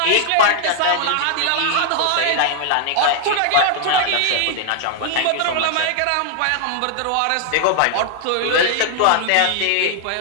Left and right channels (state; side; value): different; both; correlation 0.00